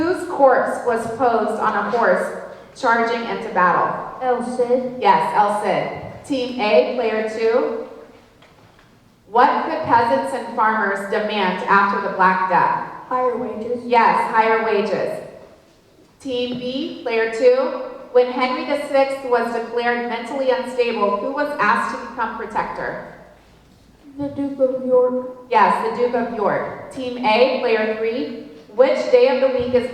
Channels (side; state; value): both; identical; correlation 1.00